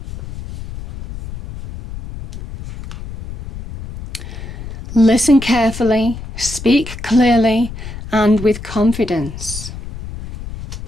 Listen carefully, speak clearly, and with confidence.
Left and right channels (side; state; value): left; noise; rumble, 11 dB below the sound